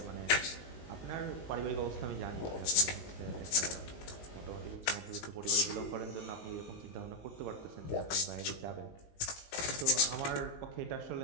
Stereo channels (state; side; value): late; right; 19 ms